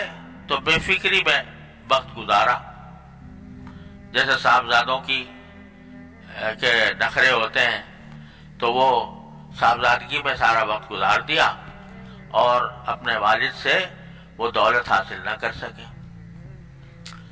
تو بے فکری میں وقت گزارا، جیسے صاحبزادوں کی کے نخرے ہوتے ہیں، تو وہ صاحبزادگی میں سارا وقت گزار دیا اور اپنے والد سے وہ دولت حاصل نہ کر سکے۔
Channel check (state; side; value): identical; both; correlation 1.00